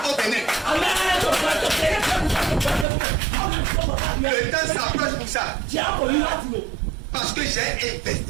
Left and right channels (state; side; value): drops out; left; at 2.9 s